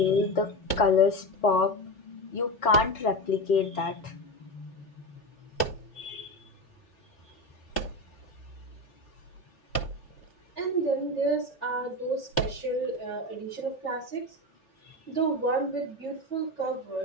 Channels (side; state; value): right; late; 2.9 ms